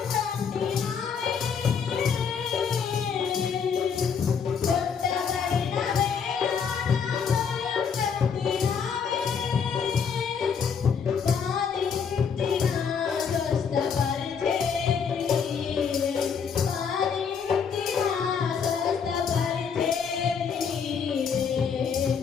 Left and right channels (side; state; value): right; quieter; 6.6 dB